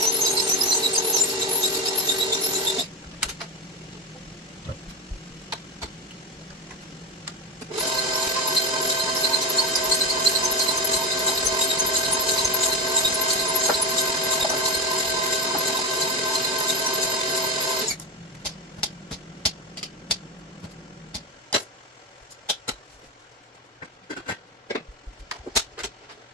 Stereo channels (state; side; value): normal; both; correlation 0.15